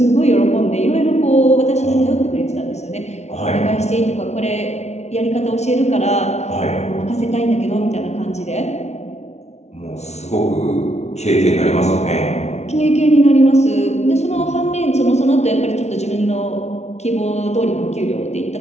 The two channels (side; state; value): right; late; 0.32 ms